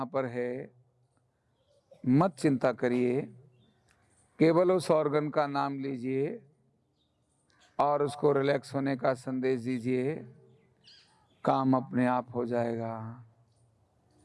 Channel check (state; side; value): identical; both; correlation 1.00